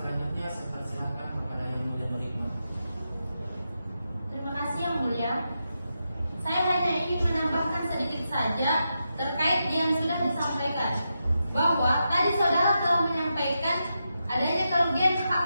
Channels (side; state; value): both; inverted; correlation -0.87